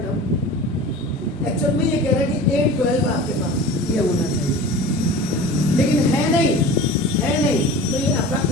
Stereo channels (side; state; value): both; normal; correlation 0.37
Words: टर्म। एक्चुअल में ये कह रहा है कि A12 आपके पास ये होना चाहिए, लेकिन है नहीं, तो ये आपका